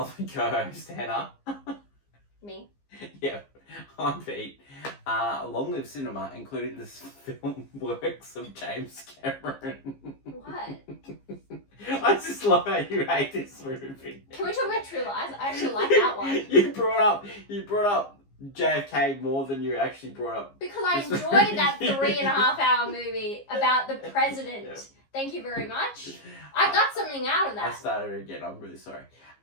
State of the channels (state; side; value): late; right; 15 ms